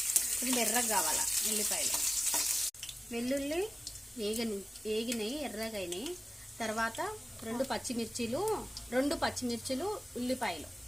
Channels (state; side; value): normal; both; correlation 0.97